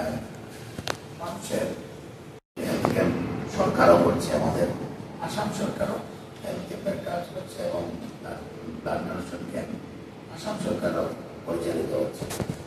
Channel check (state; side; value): identical; both; correlation 1.00